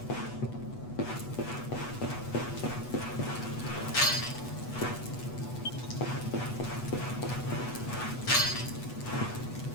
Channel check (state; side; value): late; right; 8.1 ms